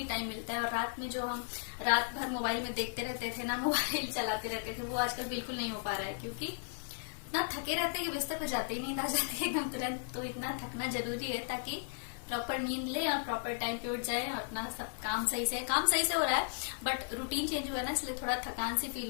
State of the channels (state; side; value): silent; right; digital silence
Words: टाइम मिलता है, और रात में जो हम रात भर मोबाइल में देखते रहते थे ना, मोबाइल चलाते रहते थे, वो आजकल बिल्कुल नहीं हो पा रहा है क्योंकि इतना थके रहते हैं कि बिस्तर पर जाते ही नींद आ जाती है एकदम तुरंत। तो इतना थकना जरूरी है ताकि प्रॉपर नींद ले और प्रॉपर टाइम पे उठ जाए और अपना सब काम सही से हो रहा है, बट रूटीन चेंज हुआ है ना, इसलिए थोड़ा थकान सी